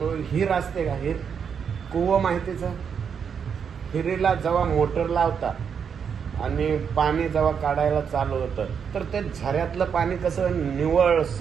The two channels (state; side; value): quieter; left; 7.0 dB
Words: हिर असते का? हिर कुवं माहितीचं? हिरीला जेव्हा मोटर लावतात आणि पाणी जेव्हा काढायला चालू होतं तर ते झऱ्यातलं पाणी कसं निव्वळ